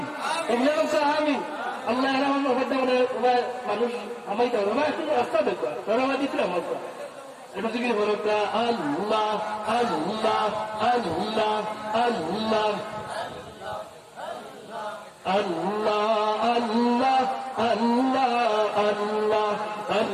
এমনি মুখা আমিন আল্লাহ এরা মানুষ আমাইতে হবে একটু রাস্তা দেখবা ধরাবা দিতে আমার এটা থেকে বড়টা আল্লাহ আল্লাহ আল্লাহ আল্লাহ আল্লাহ আল্লাহ আল্লাহ আল্লাহ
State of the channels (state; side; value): identical; both; correlation 1.00